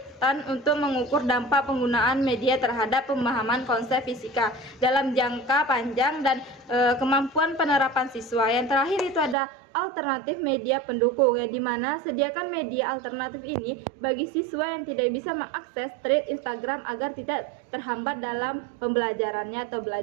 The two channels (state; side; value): drops out; left; at 9.3 s